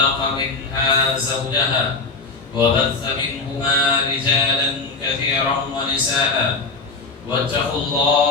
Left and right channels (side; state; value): right; quieter; 4.0 dB